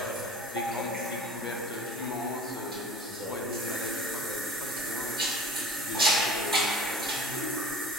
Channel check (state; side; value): normal; both; correlation 0.41